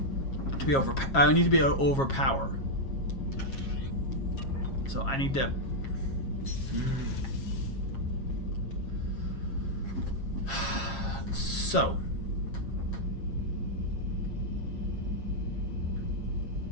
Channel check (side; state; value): right; late; 7.4 ms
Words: I need to be overpower. So I need to. So